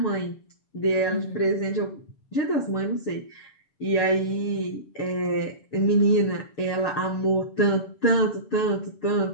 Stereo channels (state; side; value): late; right; 7.2 ms